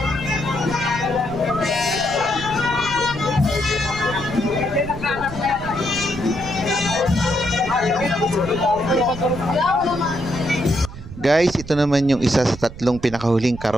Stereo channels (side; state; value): right; noise; rumble, 13 dB below the sound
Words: Guys, ito naman yung isa sa tatlong pinakahuling